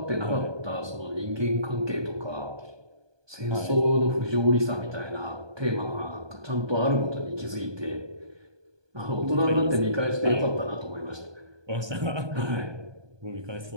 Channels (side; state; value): left; late; 1.2 ms